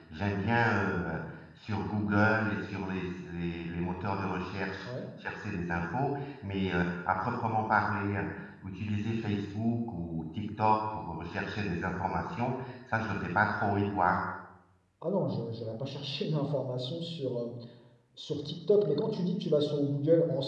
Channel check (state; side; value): identical; both; correlation 1.00